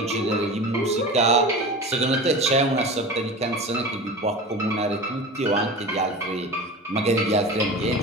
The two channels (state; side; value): normal; both; correlation 0.32